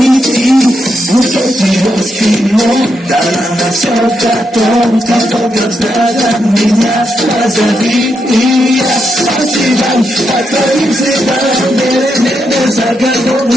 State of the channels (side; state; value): both; normal; correlation 0.82